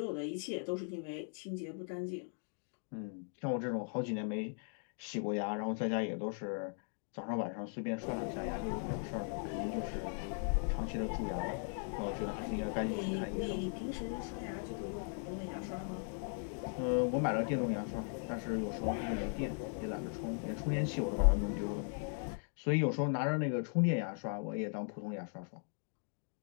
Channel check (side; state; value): right; silent; 52 dB below the other